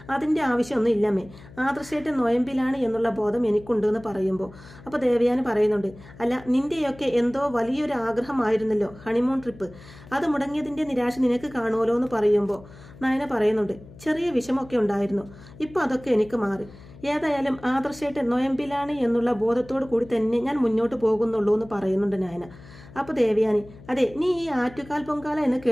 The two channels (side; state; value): left; noise; hum, 20 dB below the sound